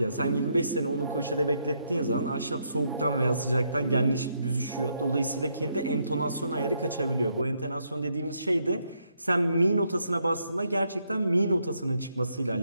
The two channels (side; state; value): both; inverted; correlation -0.76